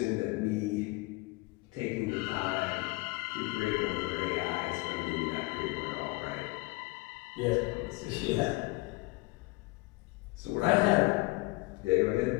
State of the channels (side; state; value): right; quieter; 23.8 dB